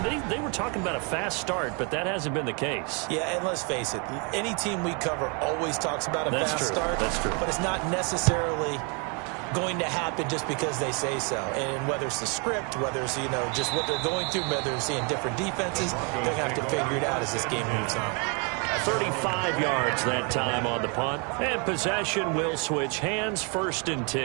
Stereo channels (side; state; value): left; quieter; 34.7 dB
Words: they were talking about a fast start, but that hasn't been the case. Yeah, and let's face it, any team we cover always talks about a fast start. That's true. But it's not necessarily going to happen just because they say so. And whether it's the script, whether it's, just what they're going through, whether they're seeing different defenses, they're going to have to figure it out as this game moves on. 35 yards that time on the punt. And possession will switch hands, 1st and